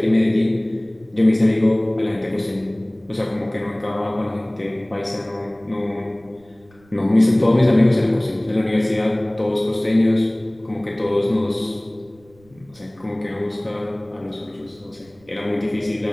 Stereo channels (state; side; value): noise; right; rumble, 30 dB below the sound